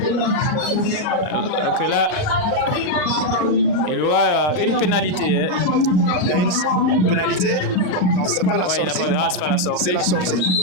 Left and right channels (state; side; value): late; right; 38 ms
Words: là, il y aura une pénalité. Hein. Il y a une pénalité. Non, c'est pas la sortie. C'est pas la sortie. C'est la sortie.